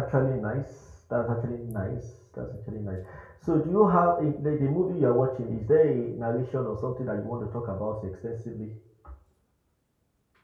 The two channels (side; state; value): both; identical; correlation 1.00